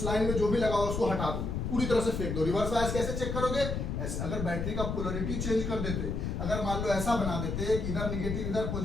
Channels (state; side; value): noise; left; rumble, 2 dB below the sound